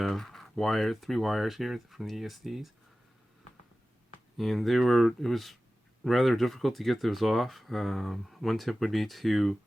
3 wires here from the ESCs, and it was rather difficult to get those off. One tip would be to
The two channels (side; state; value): both; normal; correlation 0.96